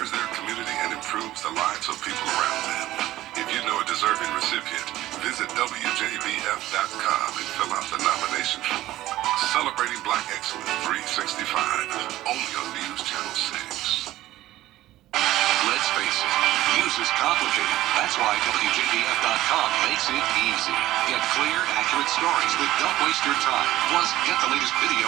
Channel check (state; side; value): quieter; left; 15.3 dB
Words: their community and improves the lives of people around them. If you know a deserving recipient, visit WJBF.com and fill out the nomination form. Celebrating Black Excellence 365, only on News Channel 6. Let's face it, news is complicated. That's why WJBF.com makes it easy. Get clear, accurate stories that don't waste your time. Plus, get the latest video